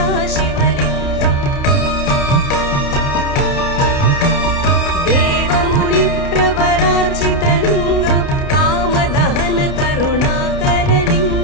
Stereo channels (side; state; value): right; late; 29 ms